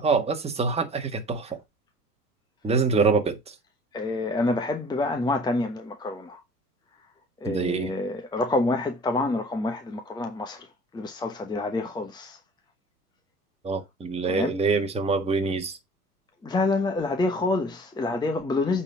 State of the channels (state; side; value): normal; both; correlation 0.46